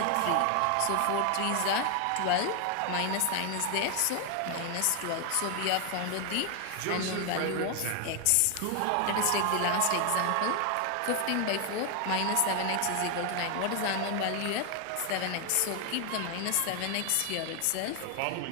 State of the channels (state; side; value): different; both; correlation 0.00